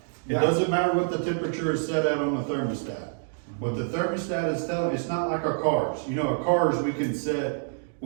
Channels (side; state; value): left; silent; digital silence